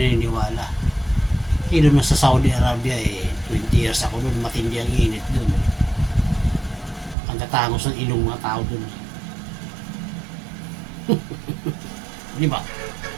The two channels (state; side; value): drops out; left; at 7.2 s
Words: Doon na sa Saudi Arabia 20 years ako doon, matindi ang init doon. Ang tatangos ng ilong mga tao doon. Di ba?